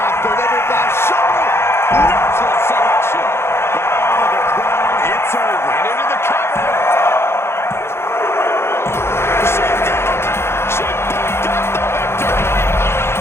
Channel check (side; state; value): right; late; 0.12 ms